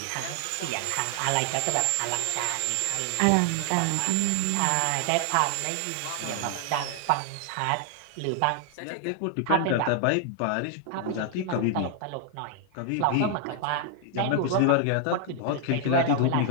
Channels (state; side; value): different; both; correlation 0.00